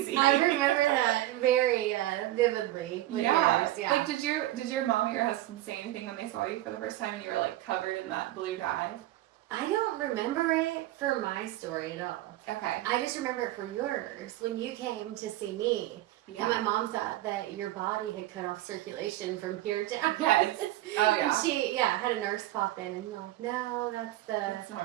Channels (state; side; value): quieter; left; 15.7 dB